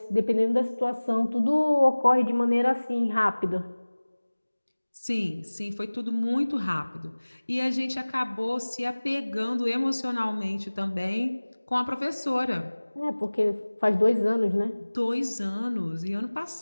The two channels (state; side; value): inverted; both; correlation -1.00